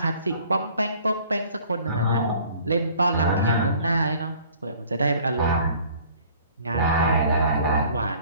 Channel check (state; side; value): inverted; both; correlation -0.53